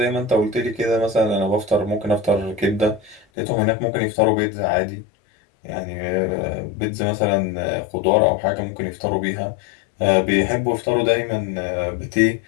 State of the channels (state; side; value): drops out; right; at 3.2 s